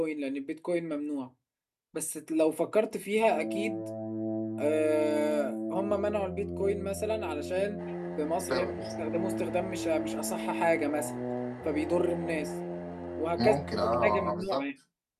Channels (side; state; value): both; identical; correlation 1.00